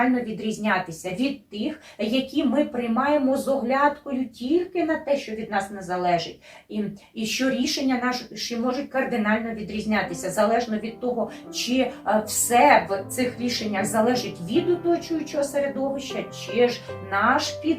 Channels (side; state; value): both; identical; correlation 1.00